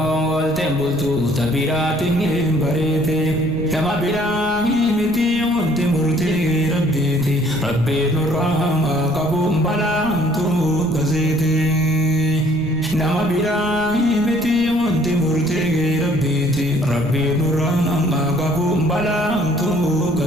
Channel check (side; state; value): right; noise; rumble, 16 dB below the sound